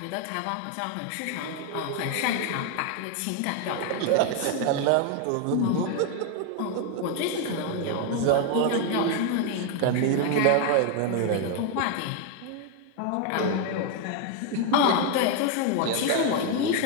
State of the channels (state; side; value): different; both; correlation 0.01